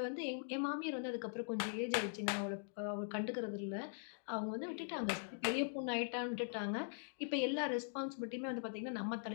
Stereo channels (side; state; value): right; silent; digital silence